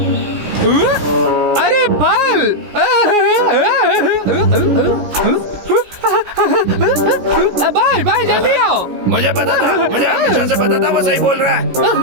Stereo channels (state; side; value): late; left; 17 ms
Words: अरे फल! भाई भाई जल्दी आओ। मुझे पता था, मुझे हमेशा से पता था वो सही बोल रहा है।